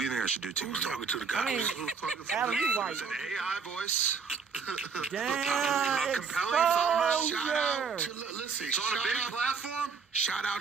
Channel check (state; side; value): quieter; left; 5.6 dB